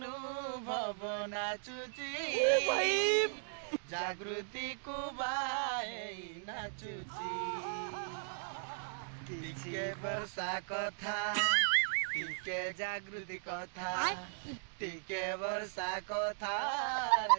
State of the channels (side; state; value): left; silent; digital silence